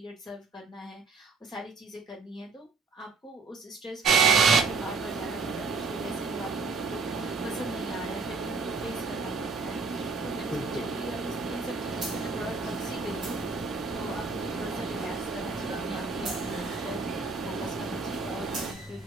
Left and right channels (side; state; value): left; quieter; 4.3 dB